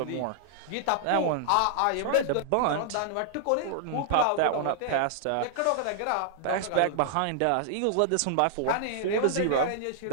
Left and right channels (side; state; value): both; different; correlation -0.01